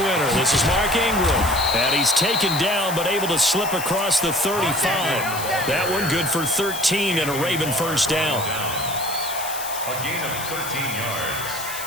this is Mark Ingram. And he's taken down but able to slip across the 35. That one good for 13 and a Raven first down. A gain of 13 yards.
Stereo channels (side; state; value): left; noise; hiss, 9 dB below the sound